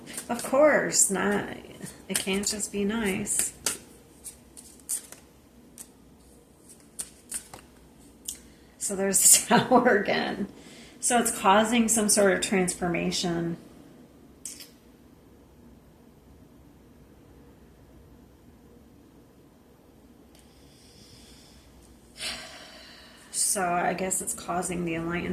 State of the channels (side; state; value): both; identical; correlation 1.00